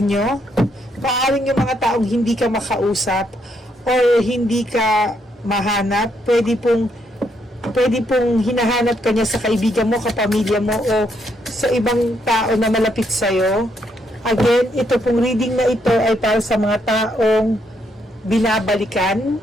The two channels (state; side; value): normal; both; correlation 0.75